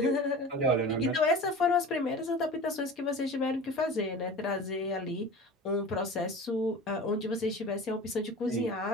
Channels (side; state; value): both; normal; correlation 0.36